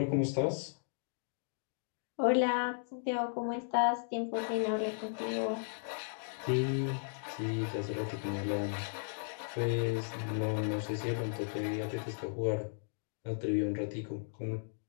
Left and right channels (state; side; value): silent; right; digital silence